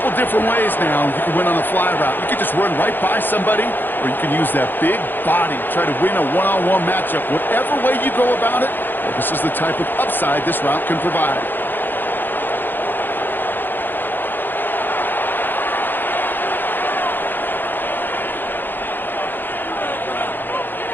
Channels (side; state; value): right; late; 0.093 ms